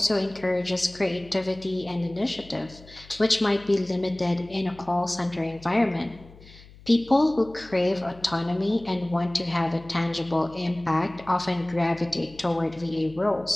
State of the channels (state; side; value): noise; left; hum, 22 dB below the sound